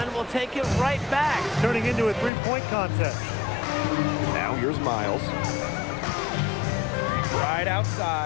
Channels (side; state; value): right; drops out; at 2.3 s